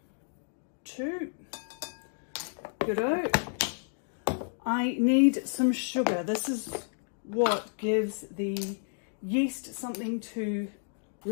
2. Good-o. I need some sugar. This is what gives the yeast something to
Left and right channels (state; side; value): silent; right; digital silence